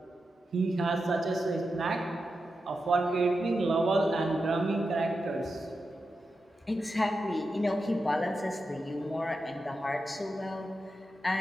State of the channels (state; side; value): normal; both; correlation 0.89